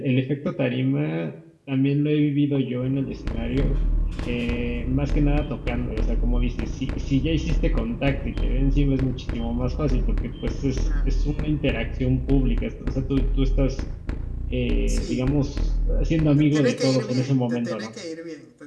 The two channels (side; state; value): both; identical; correlation 1.00